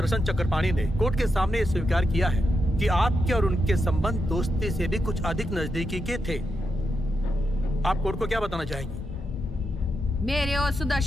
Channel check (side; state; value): both; normal; correlation 0.85